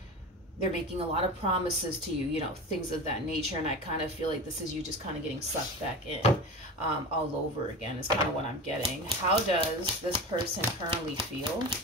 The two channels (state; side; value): normal; both; correlation 0.28